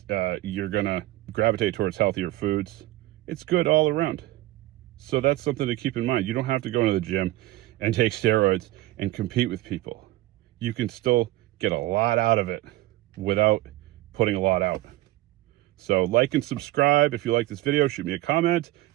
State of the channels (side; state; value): left; quieter; 17.2 dB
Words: you're going to gravitate towards healthier foods. It's good all around. So that's something to keep in mind. You don't have to go into the gym and take steroids and compete with people. You can still get a lot out of it without putting a lot out. So like and subscribe. If you like this video, shoot me a comment,